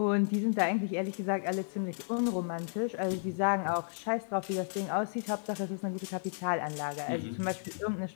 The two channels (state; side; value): silent; right; digital silence